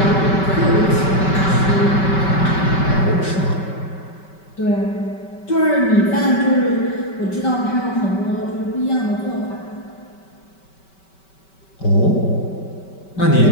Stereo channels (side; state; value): right; late; 5.2 ms